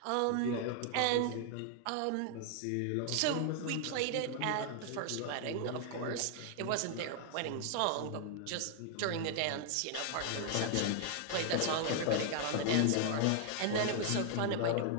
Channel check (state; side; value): different; both; correlation 0.00